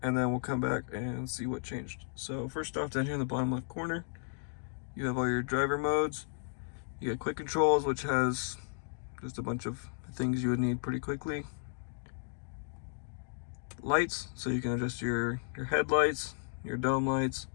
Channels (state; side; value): silent; right; digital silence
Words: and then we'll come back and see what changed. So first off, down here in the bottom left corner, you have all your driver modes. You got quick controls, which has just a bunch of things you would need pretty quickly. Lights, so you can adjust your headlights, your dome lights,